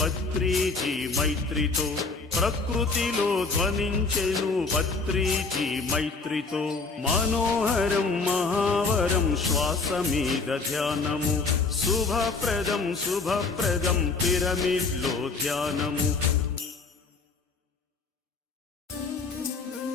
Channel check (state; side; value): quieter; right; 4.2 dB